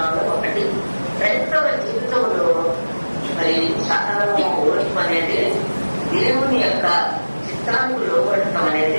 ఒకటి. క్రైస్తవ జీవితంలో మరి సకలము ఓర్పు అనేది దేవుని యొక్క చిత్తానికి లోపడటం అనేది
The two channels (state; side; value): inverted; both; correlation -1.00